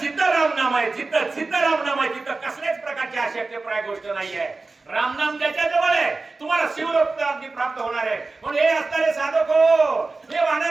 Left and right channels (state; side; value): quieter; left; 3.6 dB